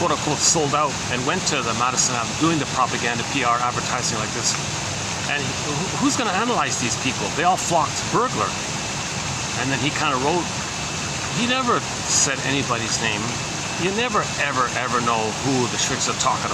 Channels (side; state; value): both; identical; correlation 1.00